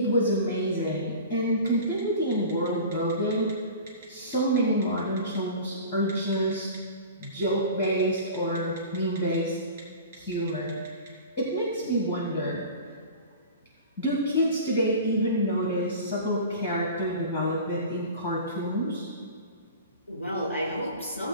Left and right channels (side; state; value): both; inverted; correlation -0.37